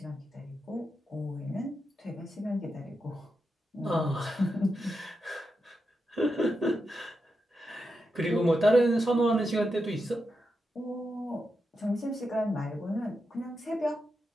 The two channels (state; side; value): normal; both; correlation 0.87